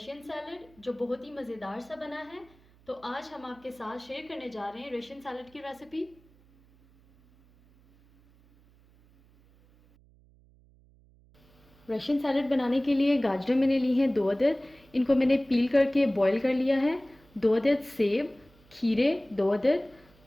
सैलड जो बहुत ही मज़ेदार सा बना है। तो आज हम आपके साथ शेयर करने जा रहे हैं रशियन सैलड की रेसिपी। रशियन सैलड बनाने के लिए गाजर मैंने ली हैं 2 अदद। इनको मैंने पील करके बॉईल कर लिया है। 2 अदद सेब, खीरे 2 अदद,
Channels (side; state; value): right; noise; hum, 29 dB below the sound